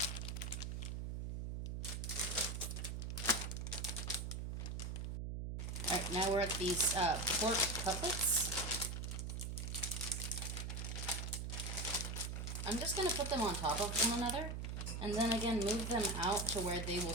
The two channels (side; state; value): right; noise; hum, 4 dB below the sound